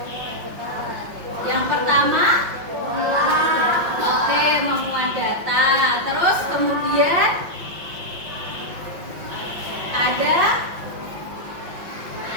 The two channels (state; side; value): late; left; 5.5 ms